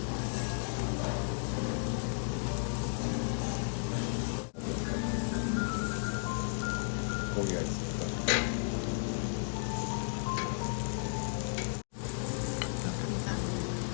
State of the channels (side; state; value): right; silent; digital silence